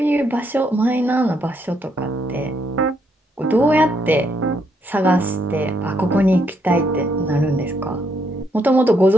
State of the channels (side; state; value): both; normal; correlation 0.75